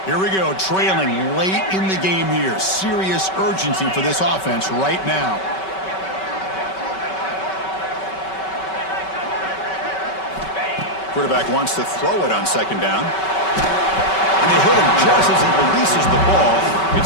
Here we go, trailing late in the game here. Serious urgency for this offense right now. Quarterback wants to throw it on second down. And they hit him just as he releases the ball.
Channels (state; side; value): late; right; 5.3 ms